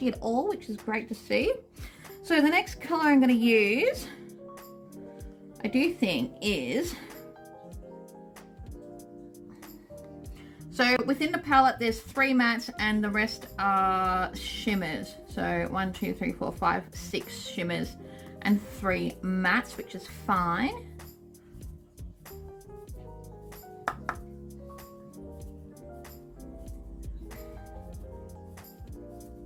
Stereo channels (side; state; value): both; identical; correlation 1.00